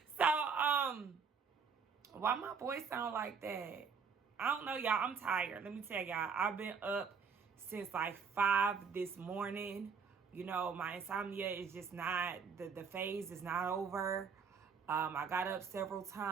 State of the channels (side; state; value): left; quieter; 5.8 dB